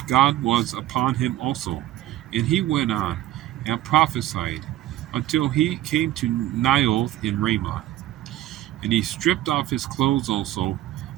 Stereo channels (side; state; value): left; quieter; 14.3 dB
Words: God was upon him also. And he went on and prophesied until he came to Naioth in Ramah. And he stripped off his clothes also,